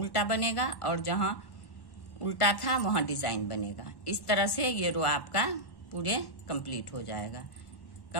बनेगा, और जहां उल्टा था वहां डिजाइन बनेगा। इस तरह से ये रो आपका पूरे कंप्लीट हो जाएगा।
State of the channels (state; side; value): late; right; 1.1 ms